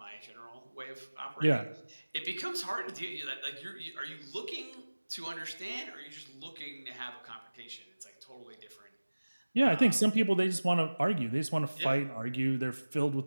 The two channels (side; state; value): both; inverted; correlation -1.00